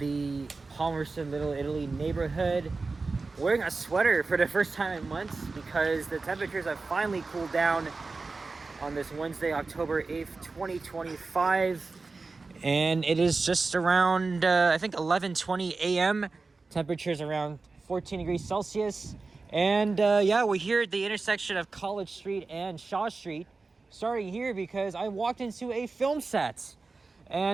Palmerston, Little Italy neighborhood, wearing a sweater for the first time in months because the temperatures have finally cooled down on this Wednesday, October 8th, 2025. And it is just around, I think, 11:20 a.m. Temperatures around 14 degrees Celsius. And yeah, we're here at the intersection of College Street and Shaw Street. Starting here because I walked into a film set,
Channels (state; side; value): quieter; left; 3.9 dB